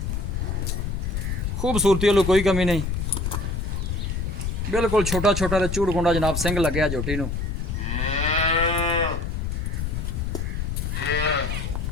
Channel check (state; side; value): noise; left; rumble, 2 dB below the sound